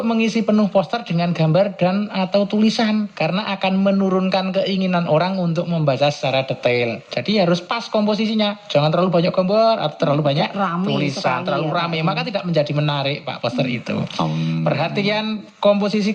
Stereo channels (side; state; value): both; identical; correlation 1.00